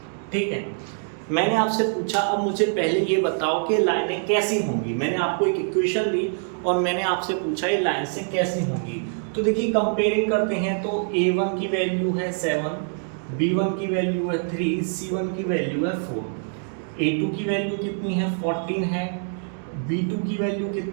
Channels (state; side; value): silent; left; 62 dB below the other